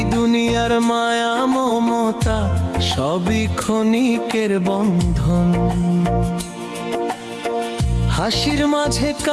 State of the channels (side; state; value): both; identical; correlation 1.00